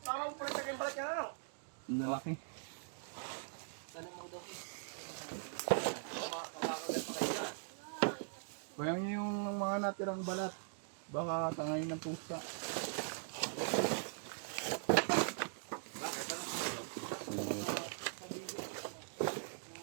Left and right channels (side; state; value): left; silent; digital silence